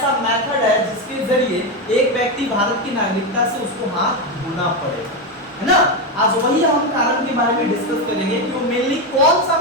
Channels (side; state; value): both; normal; correlation 0.11